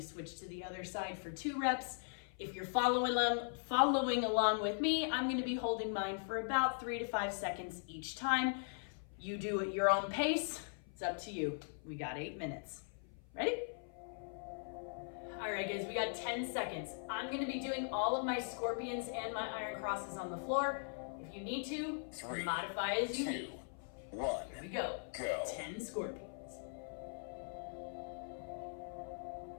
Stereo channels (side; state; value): right; silent; 51 dB below the other